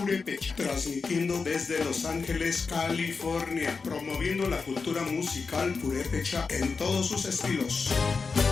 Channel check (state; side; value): quieter; right; 4.7 dB